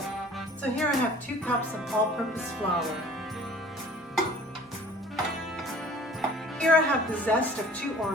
So here I have 2 cups of all-purpose flour. Here I have the zest of 2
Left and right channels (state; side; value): normal; both; correlation 0.49